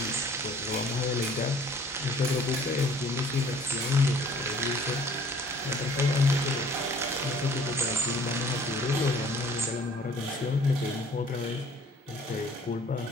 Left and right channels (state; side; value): normal; both; correlation 0.54